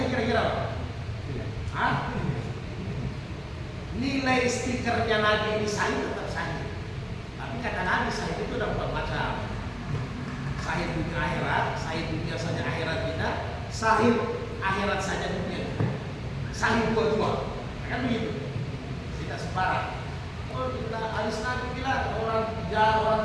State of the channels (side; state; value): both; identical; correlation 1.00